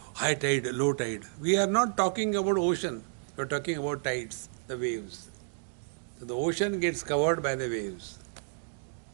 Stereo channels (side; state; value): left; silent; digital silence